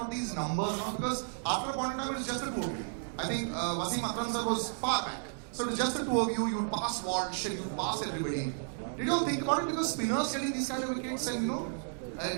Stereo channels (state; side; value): silent; left; digital silence